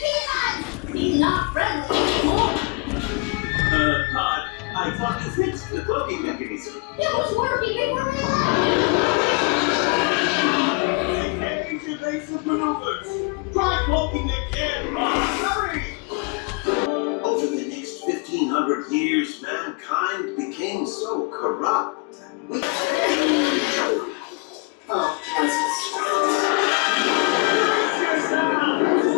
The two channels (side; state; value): right; quieter; 30.2 dB